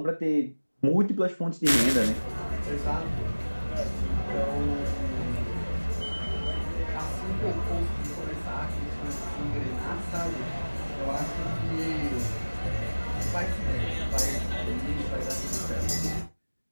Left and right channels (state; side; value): inverted; both; correlation -1.00